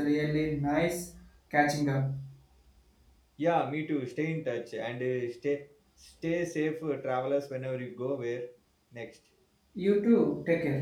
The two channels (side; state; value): both; identical; correlation 1.00